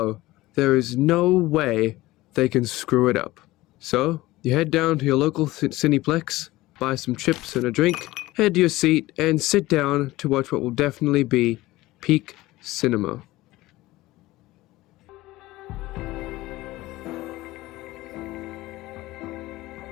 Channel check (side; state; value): right; quieter; 18.3 dB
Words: there is no way they can screw it up. So, you head down to your local Cineplex, buy some chips and a drink, head to your seat, and sit down to watch what will definitely be peak cinema.